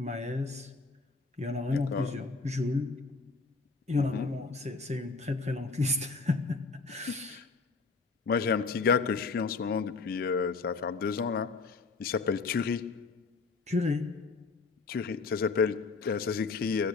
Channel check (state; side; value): quieter; right; 4.3 dB